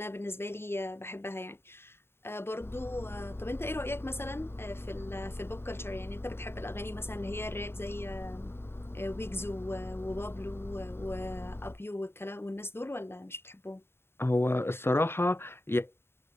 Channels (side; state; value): right; late; 0.11 ms